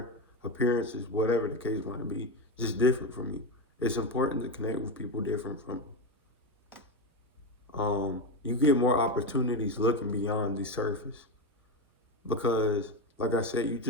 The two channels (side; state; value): both; normal; correlation 0.14